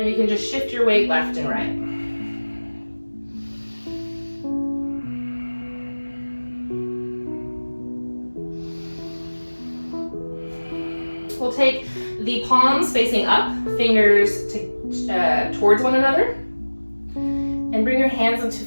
you can just shift your weight left and right. We'll take the palms facing up, fingers towards one another, and bring your hands into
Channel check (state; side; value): inverted; both; correlation -1.00